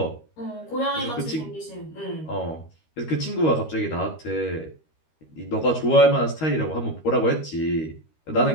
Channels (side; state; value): right; late; 13 ms